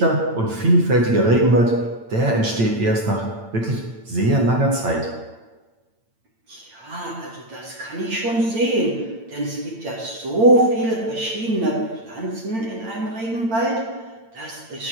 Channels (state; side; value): late; left; 8.8 ms